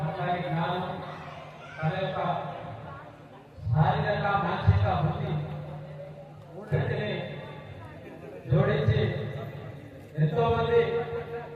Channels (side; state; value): both; identical; correlation 1.00